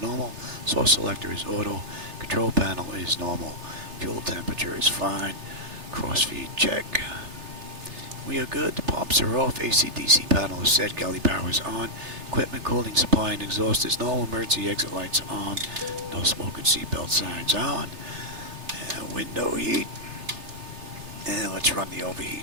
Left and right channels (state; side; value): late; left; 3.3 ms